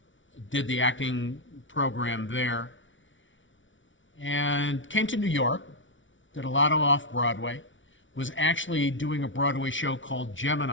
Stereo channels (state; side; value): late; right; 0.56 ms